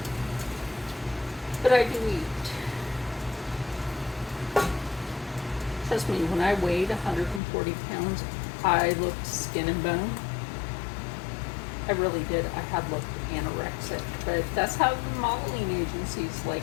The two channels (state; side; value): drops out; right; at 7.4 s